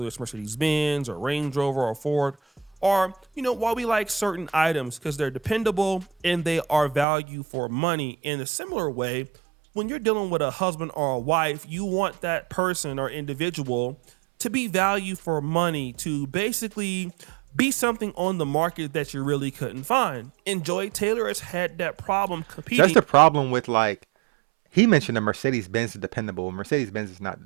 it's Mercedes Benz or Range Rover or Ford, or why we like certain items, because they're dependable and they are value for money. In a similar way, when you're dealing with a husband or a wife, you want that person or individual to be value for money, to basically be something on the market that you really couldn't find. And Joy Taylor has had that problem So that's competing. the problem with like he mentioned the Mercedes Benz is dependable. Mercedes Benz is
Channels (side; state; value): left; drops out; at 7.1 s